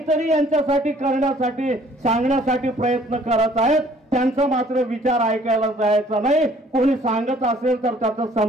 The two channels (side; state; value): both; normal; correlation 0.57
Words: यांच्यासाठी करण्यासाठी सांगण्यासाठी प्रयत्न करत आहेत. त्यांचा मात्र विचार ऐकायला जायचा नाही. कोणी सांगत असेल तर त्याचं